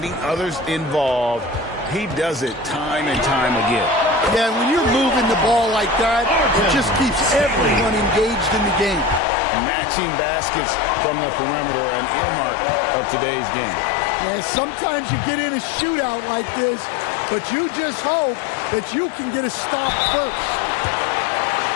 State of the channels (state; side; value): drops out; right; at 9.2 s